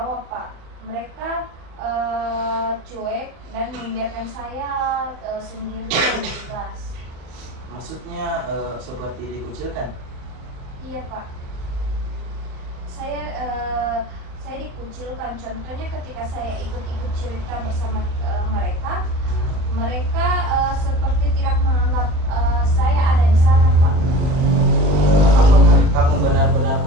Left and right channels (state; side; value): late; left; 38 ms